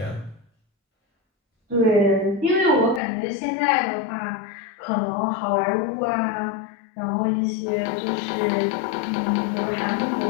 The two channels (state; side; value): drops out; right; at 3.0 s